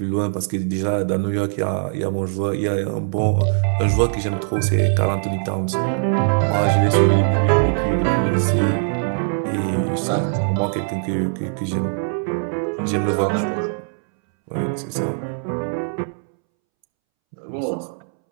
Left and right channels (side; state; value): left; silent; 65 dB below the other